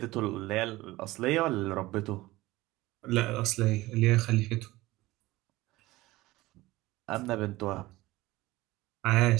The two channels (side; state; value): left; quieter; 18.9 dB